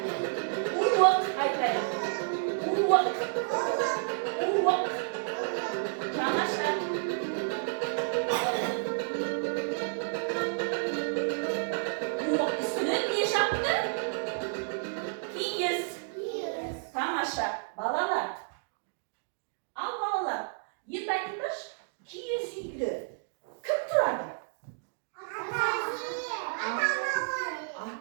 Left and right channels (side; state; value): left; silent; digital silence